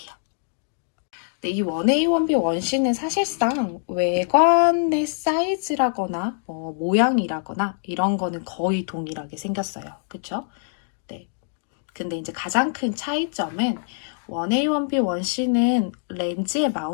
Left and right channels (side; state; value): right; silent; digital silence